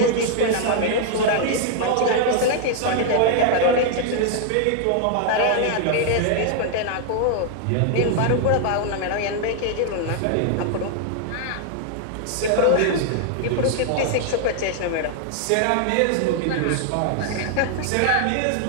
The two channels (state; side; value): different; both; correlation 0.00